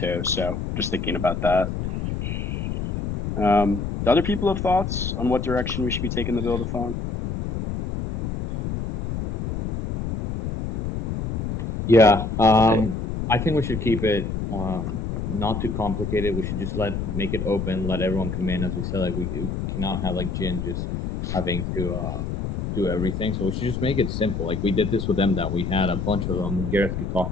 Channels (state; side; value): noise; left; rumble, 4 dB below the sound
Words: So just thinking about that. Do other people have thoughts on what direction we should be taking the buildathon? Yeah, I think we should keep it not too complicated. We should just make it open, let everyone come in. As we said, like we cannot have like Jin just having to do everything. So we should just make it simple. Like we did this with them, that we had a bunch of them. Gareth could